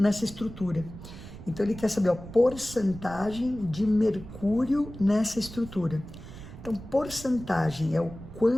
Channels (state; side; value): noise; right; rumble, 14 dB below the sound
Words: estrutura. Então, ele quer saber a porcentagem de mercúrio nessa estrutura. Então, porcentagem é o